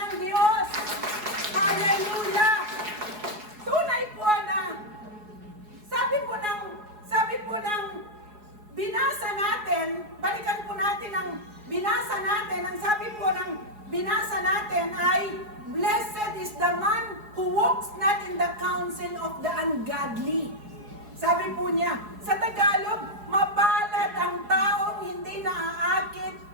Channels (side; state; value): left; late; 4.7 ms